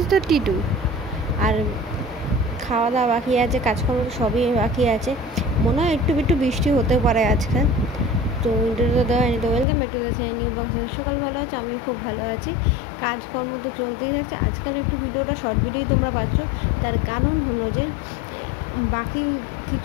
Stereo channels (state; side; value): drops out; right; at 9.7 s